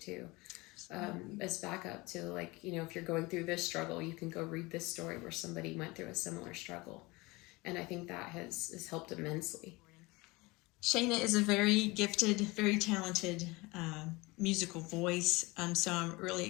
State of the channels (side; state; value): right; quieter; 23.4 dB